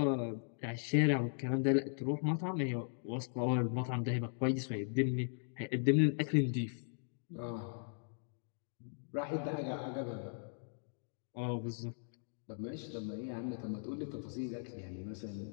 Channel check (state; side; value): silent; right; digital silence